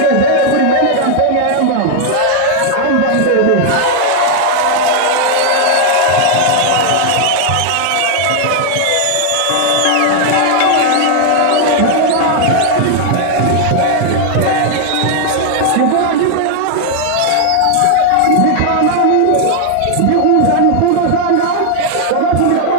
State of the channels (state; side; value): different; both; correlation 0.00